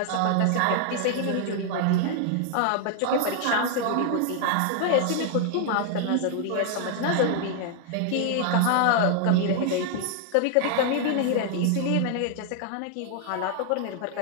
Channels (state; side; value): different; both; correlation 0.00